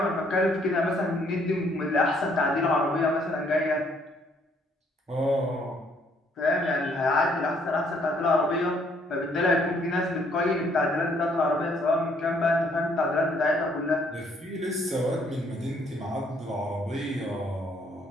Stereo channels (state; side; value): normal; both; correlation 0.66